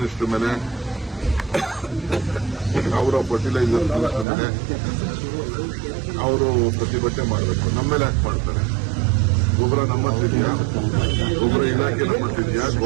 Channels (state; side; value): drops out; left; at 4.2 s